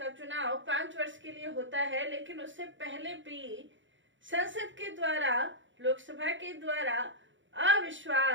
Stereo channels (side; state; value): left; late; 0.55 ms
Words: चुनाव 5 वर्ष के लिए होता है, लेकिन उससे पहले भी संसद के द्वारा, लोकसभा के द्वारा